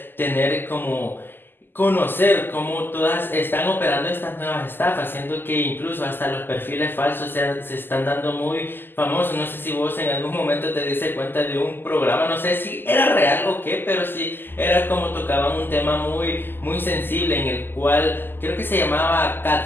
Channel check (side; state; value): right; late; 0.095 ms